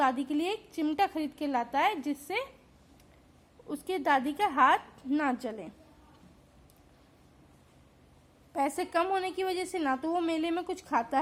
के लिए एक चिमटा खरीद के लाता है जिससे उसके दादी का हाथ ना जले। पैसे कम होने की वजह से ना तो वो मेले में कुछ खाता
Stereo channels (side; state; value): both; identical; correlation 1.00